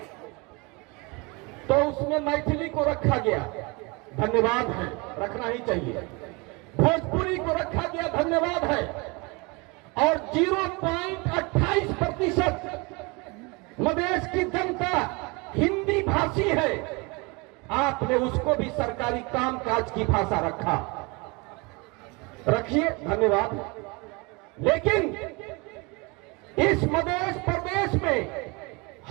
तो उसमें मैथिली को रखा गया, धन्यवाद है, रखना ही चाहिए। भोजपुरी को रखा गया, धन्यवाद है, और 0.28% मधेश की जनता हिंदी भाषी है, आपने उसको भी सरकारी कामकाज की भाषा रखा, रखिए, धन्यवाद। लेकिन इस मध्य प्रदेश में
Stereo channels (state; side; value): quieter; left; 27.7 dB